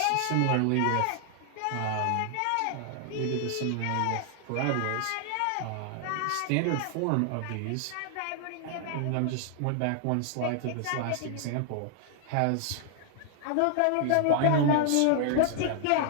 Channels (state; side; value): different; both; correlation 0.00